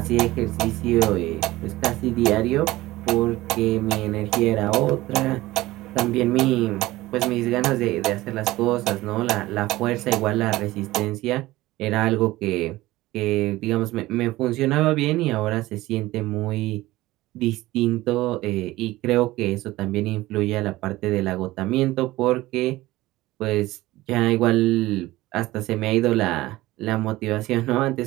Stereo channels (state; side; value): quieter; left; 17.8 dB